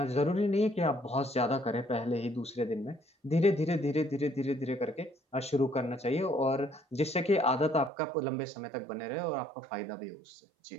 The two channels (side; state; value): left; drops out; at 7.9 s